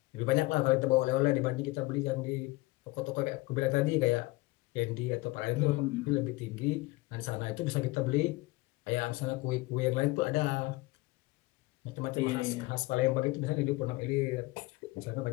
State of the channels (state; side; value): quieter; right; 21.7 dB